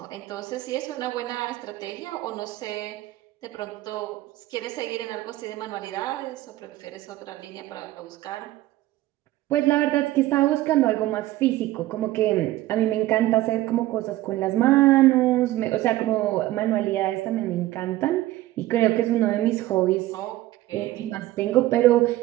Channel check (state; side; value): quieter; left; 16.1 dB